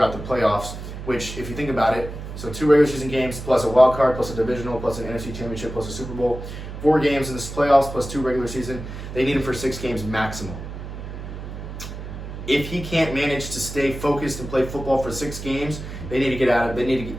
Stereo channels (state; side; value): noise; right; hum, 9 dB below the sound